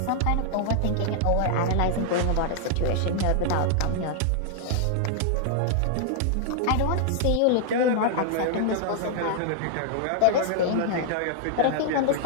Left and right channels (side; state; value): both; different; correlation -0.01